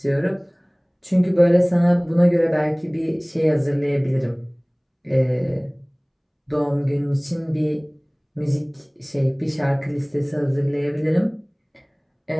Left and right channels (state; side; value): identical; both; correlation 1.00